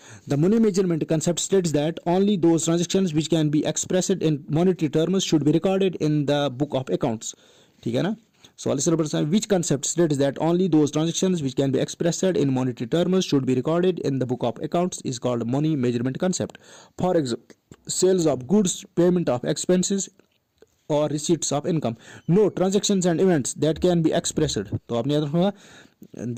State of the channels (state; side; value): identical; both; correlation 1.00